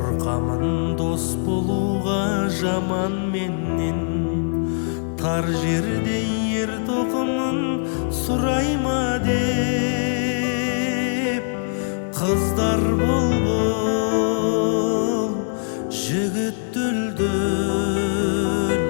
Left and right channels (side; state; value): right; silent; digital silence